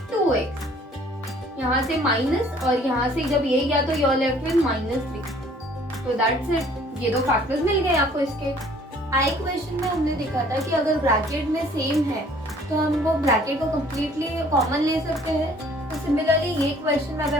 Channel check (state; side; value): normal; both; correlation 0.56